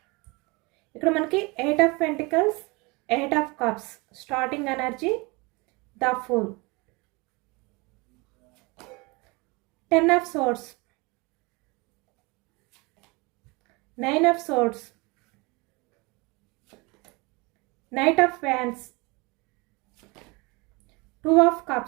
ఇక్కడ మనకి 8 of pentacles, 8 of cups, starting energy, the fool, 10 of swords, 9 of swords, Knight of Wands, 2 of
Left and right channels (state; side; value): quieter; left; 26.7 dB